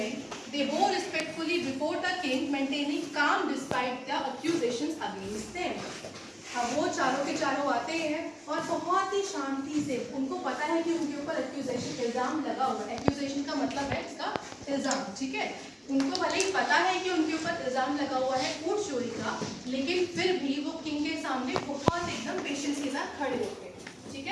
They bow respectfully before the king, maintaining calm despite the accusations against them. अब वो चारों के चारों आते हैं और बहुत ही शांति से, उनको पता है कि उनके ऊपर एक्यूजेशन इल्जाम लगा हुआ है. एक्यूजेशन का मतलब है इसका इल्जाम. ठीक है. उनको भले ही पता है कि उनके ऊपर इल्जाम लगा हुआ है ऊंट चोरी का, लेकिन फिर भी वो किंग के सामने बहुत एकदम पेशेंस के साथ खड़े होते हैं. ठीक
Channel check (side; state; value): both; identical; correlation 1.00